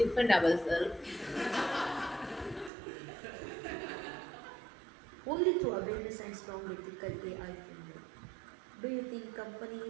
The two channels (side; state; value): left; drops out; at 2.7 s